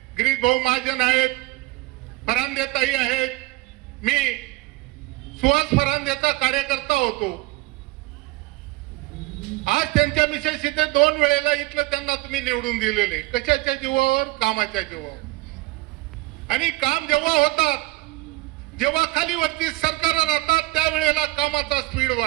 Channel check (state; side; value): quieter; left; 21.1 dB